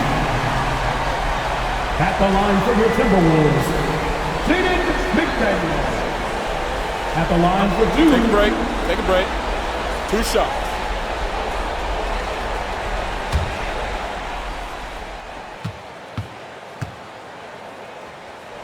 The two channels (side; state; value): both; identical; correlation 1.00